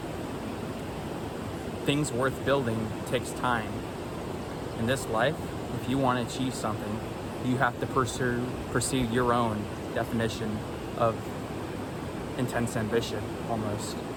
Things worth building takes time. In this life, if you want to achieve something, you have to pursue your own definition of intense ambition, almost.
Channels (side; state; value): both; identical; correlation 1.00